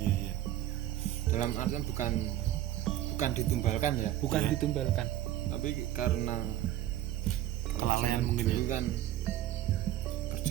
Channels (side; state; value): left; quieter; 13.2 dB